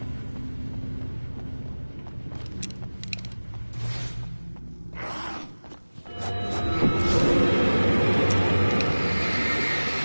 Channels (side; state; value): both; inverted; correlation -1.00